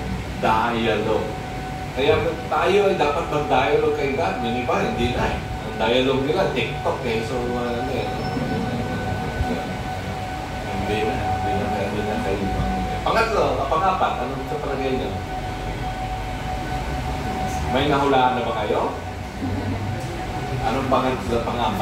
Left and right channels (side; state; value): both; identical; correlation 1.00